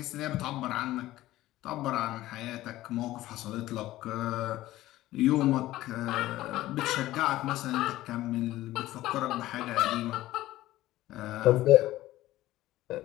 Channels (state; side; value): quieter; right; 15.8 dB